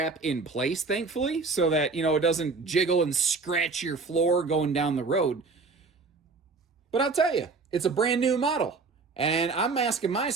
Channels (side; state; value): left; quieter; 4.3 dB